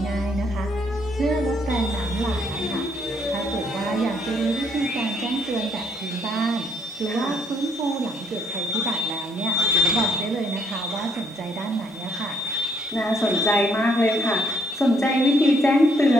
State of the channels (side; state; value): both; normal; correlation 0.70